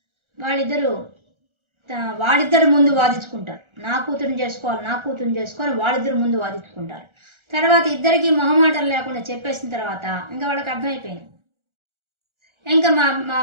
వాళ్ళిద్దరు ముందు వాదించుకుంటారు, నా కూతురుని చేసుకోవాలి వాళ్ళిద్దరు ముందు వాదించుకుంటారు. తర్వాత ఇద్దరికి మొహమాటం లేకుండా చెప్పేసిన తర్వాత ఇంకా వాళ్ళకి అర్థమైపోయింది, ఇంకా మా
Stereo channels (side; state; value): left; late; 1.4 ms